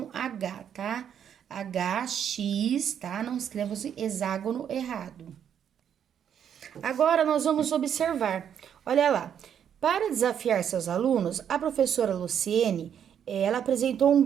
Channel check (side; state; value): left; quieter; 8.8 dB